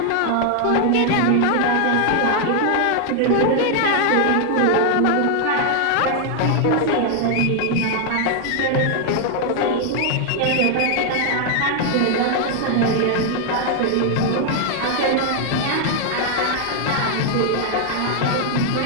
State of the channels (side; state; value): both; different; correlation 0.00